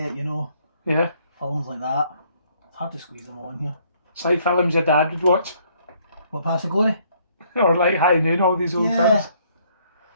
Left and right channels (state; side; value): inverted; both; correlation -0.66